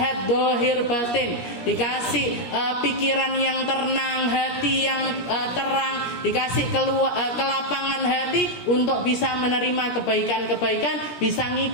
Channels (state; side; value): late; right; 17 ms